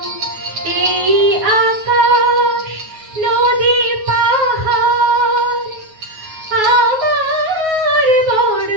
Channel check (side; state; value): left; late; 9.4 ms